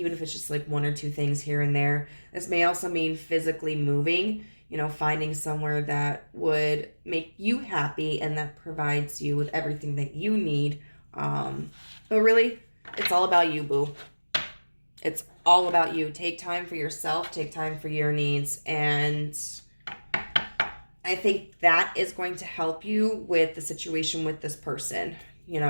if it's just like one or two things here and there. This may also mean physically moving, you know, finding somewhere that would make you happy and that provides you with everything that you need. But really, it's all about you, boo. It's all about you. Take time for yourself, take time for your needs, and I think that is going to help you with the situation with this person. You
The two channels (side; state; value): both; inverted; correlation -1.00